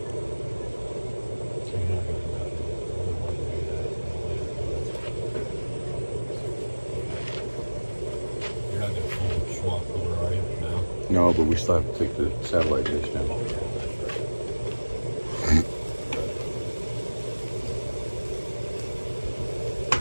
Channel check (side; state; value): both; inverted; correlation -1.00